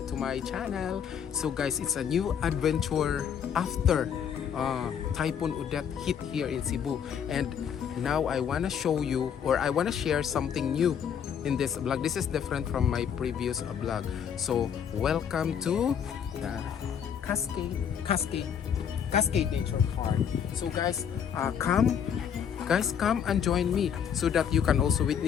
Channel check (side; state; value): right; quieter; 8.1 dB